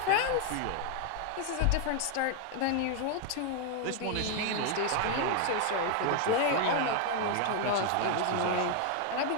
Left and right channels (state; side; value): different; both; correlation 0.00